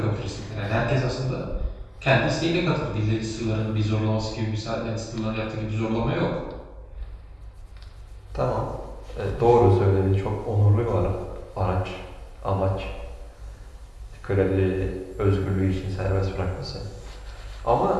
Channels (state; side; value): identical; both; correlation 1.00